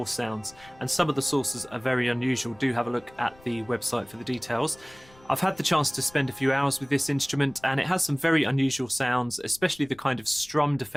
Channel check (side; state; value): left; noise; rumble, 26 dB below the sound